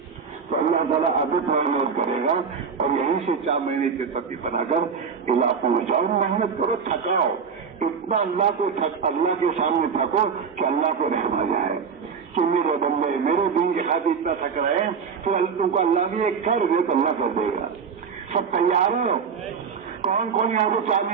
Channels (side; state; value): left; quieter; 6.1 dB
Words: تو اللہ تعالیٰ ابھی محنت کرے گا، اور یہیں سے 4 مہینے کی ترتیب بنا کر علاقوں میں جاؤ، محنت کرو، تھکاؤ، اتنا اللہ کے سامنے تھکو کہ اللہ کو رحم آ جائے کہ میرے بندے میرے دین کی خاطر اتنا تھک رہے ہیں، پھر تم کو اللہ بھی ایک کر دے تو اللہ کر دے گا۔ سب تیار ہو؟ کون کون یہاں سے 4